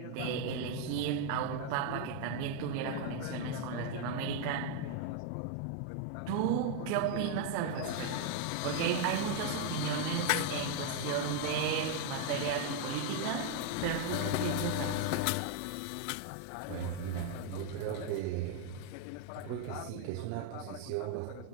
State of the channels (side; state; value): both; different; correlation 0.00